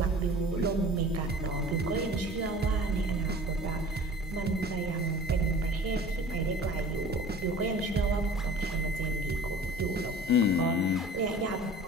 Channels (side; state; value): both; normal; correlation 0.43